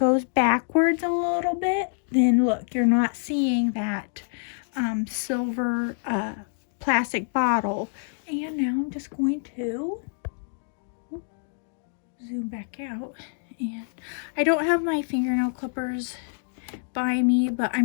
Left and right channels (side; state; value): right; silent; digital silence